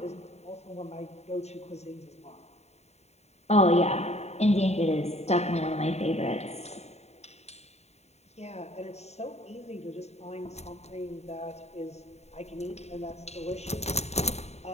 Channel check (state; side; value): late; right; 0.31 ms